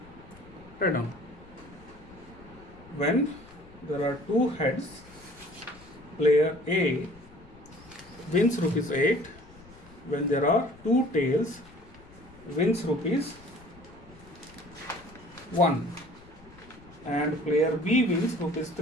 Write down. When there are two heads, player A wins rupees 8. When there are two tails, wins rupees 1. And player B wins rupees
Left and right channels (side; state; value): left; noise; rumble, 23 dB below the sound